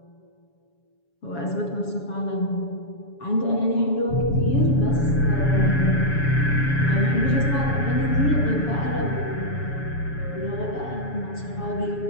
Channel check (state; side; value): late; right; 7.1 ms